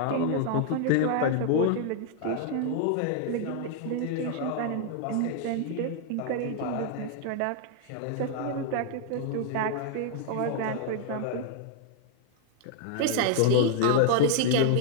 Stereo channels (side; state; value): both; different; correlation -0.01